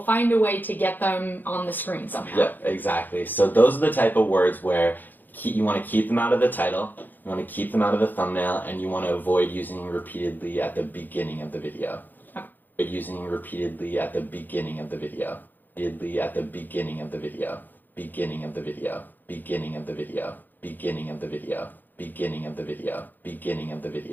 find a way to get them on the screen somehow. Yep, exactly. So those are the type of words where you want to keep them out of the title, you want to keep them out of the thumbnail, and you want to avoid using repeatedly at the beginning of the video. Okay. Using repeatedly at the beginning of the video. Repeatedly at the beginning of the video. Beginning of the video. Beginning of the video. Beginning of the video. Beginning of the video. Beginning of the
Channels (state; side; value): late; right; 0.088 ms